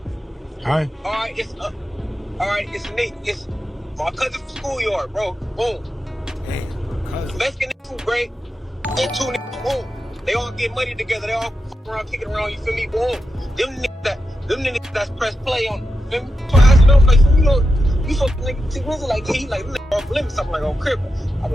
right. All right, it's Nate. It's my cousin from schoolyard, bro. Boom. Damn, cousin. Mexican food great. And 2 niggas, boom. They all get money together. They all fuck around, kicking around, you feel me? Boom. Them niggas that's press play on, you feel me? So I asked them, like, you know, you fuck nigga T Grizzly, like, he like, off limits, something like, on crib. I'm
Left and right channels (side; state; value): both; normal; correlation 0.89